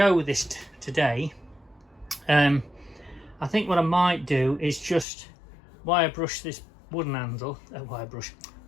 with this today. I think what I might do is just wire brush this wooden handle,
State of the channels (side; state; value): right; drops out; at 5.1 s